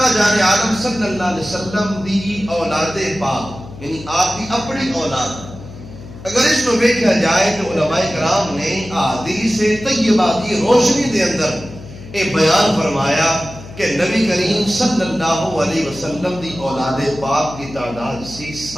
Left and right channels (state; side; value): noise; left; hum, 16 dB below the sound